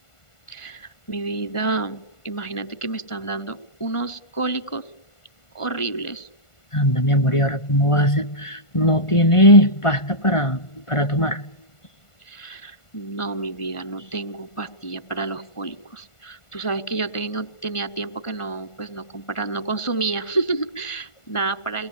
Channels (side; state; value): right; late; 1.5 ms